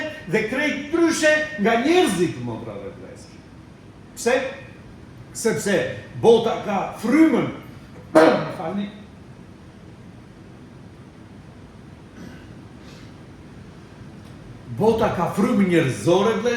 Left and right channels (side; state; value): both; identical; correlation 1.00